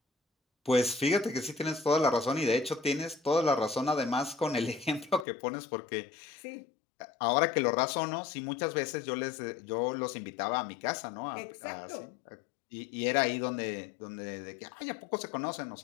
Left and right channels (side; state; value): right; drops out; at 5.2 s